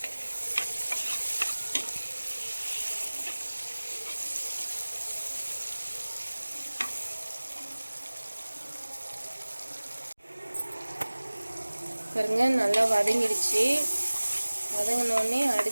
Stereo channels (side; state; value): both; inverted; correlation -1.00